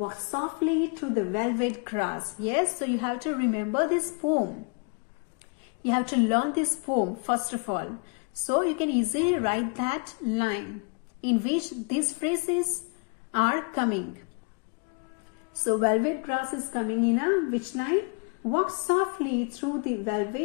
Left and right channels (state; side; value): quieter; right; 33.2 dB